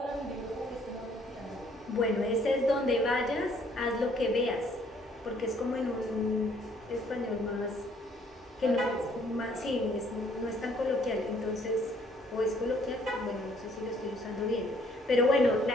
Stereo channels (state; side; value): normal; both; correlation 0.63